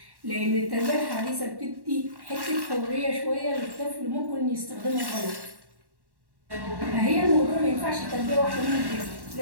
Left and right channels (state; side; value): late; left; 1.1 ms